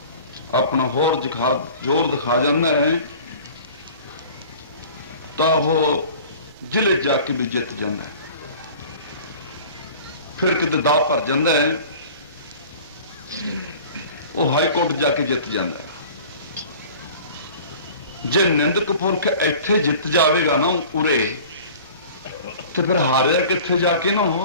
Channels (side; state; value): both; inverted; correlation -0.44